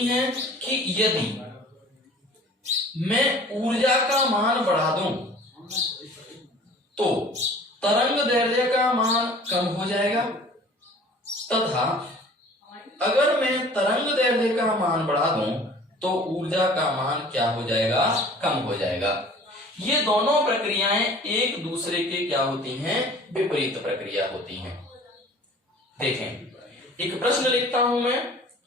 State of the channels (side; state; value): both; normal; correlation 0.47